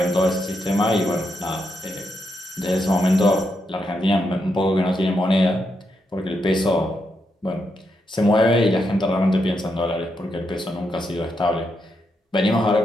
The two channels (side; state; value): both; normal; correlation 0.82